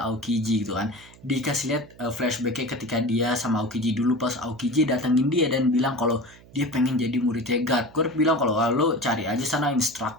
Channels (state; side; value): noise; right; hum, 24 dB below the sound